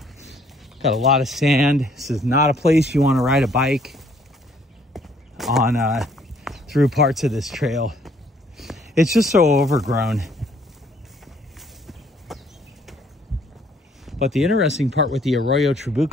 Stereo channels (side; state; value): both; normal; correlation 0.63